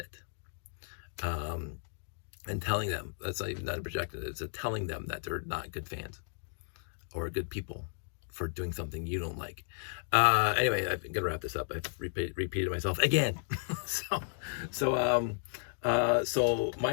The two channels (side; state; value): right; silent; digital silence